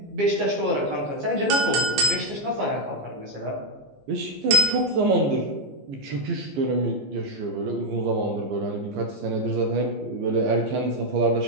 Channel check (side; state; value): left; late; 15 ms